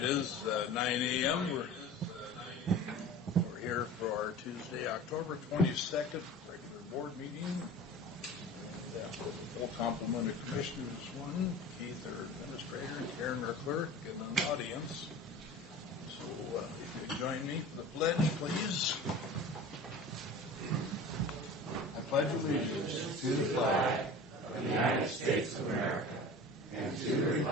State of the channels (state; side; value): normal; both; correlation 0.38